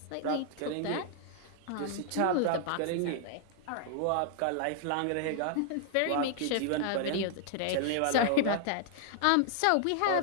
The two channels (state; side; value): different; both; correlation 0.00